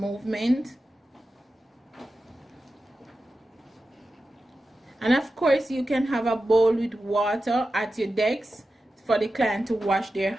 And of course you can have a bowl with water at your desk for the client to wash their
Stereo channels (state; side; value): normal; both; correlation 0.92